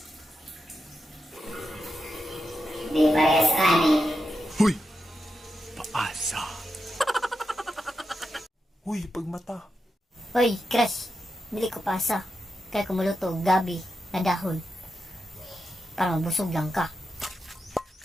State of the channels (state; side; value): normal; both; correlation 0.88